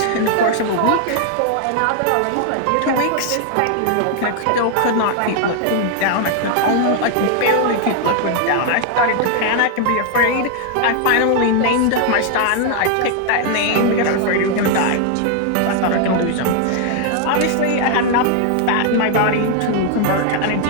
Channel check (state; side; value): different; both; correlation 0.00